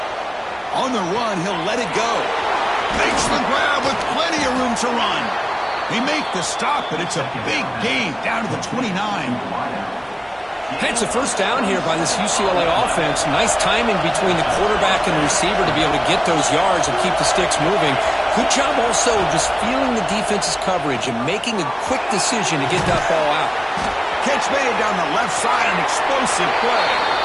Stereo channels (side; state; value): both; identical; correlation 1.00